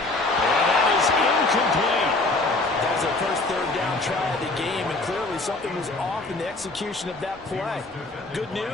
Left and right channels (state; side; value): quieter; right; 3.0 dB